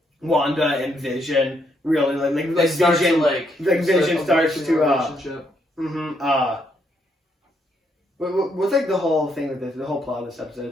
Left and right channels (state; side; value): normal; both; correlation 0.75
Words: Wanda and Vision really like Vision Vision starts to what's like the whole thing with this, the whole plot of this